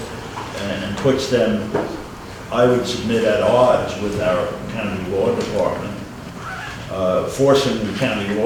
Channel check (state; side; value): identical; both; correlation 1.00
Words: and puts them, I would submit, at odds with our county law department. Forcing the county